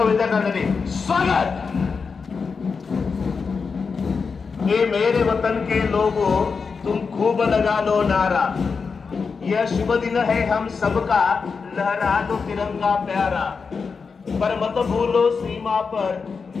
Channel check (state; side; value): quieter; right; 5.2 dB